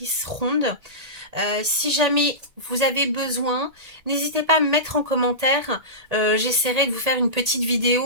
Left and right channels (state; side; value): late; left; 1.8 ms